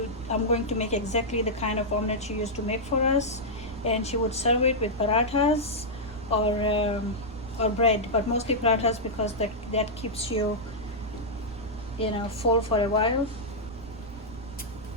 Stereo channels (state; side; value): noise; right; rumble, 16 dB below the sound